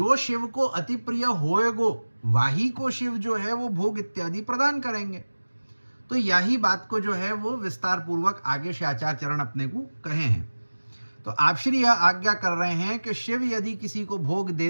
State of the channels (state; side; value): inverted; both; correlation -1.00